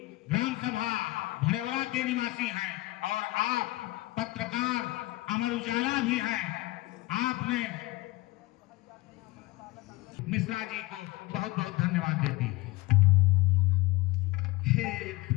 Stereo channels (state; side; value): quieter; right; 20.0 dB